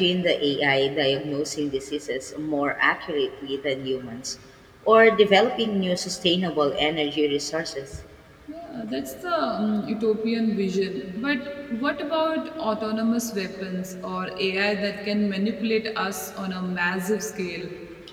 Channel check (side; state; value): both; identical; correlation 1.00